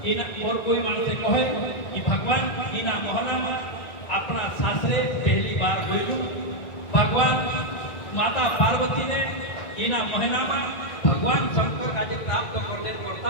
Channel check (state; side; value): late; right; 1.9 ms